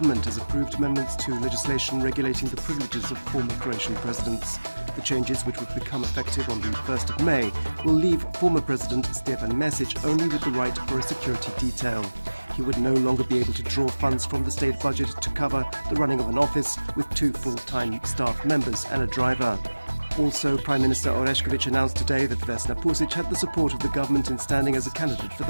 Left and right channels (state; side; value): inverted; both; correlation -1.00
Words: has approved amendments to legislation regulating the privileges of former Croatian presidents. The changes, which would become effective on the 1st of May, will leave former President Stjepan Mesić only with the right for a security detail. He would no longer be able to draw funds from the state budget to cover the running of an office with 2 full-time staff members and a driver. Also, Prime Minister Orešković announced today that Vesna Pusic had the support of the government in standing as a candidate for